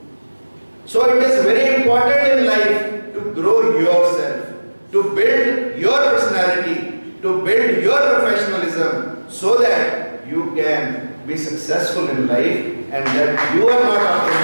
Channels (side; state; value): both; inverted; correlation -1.00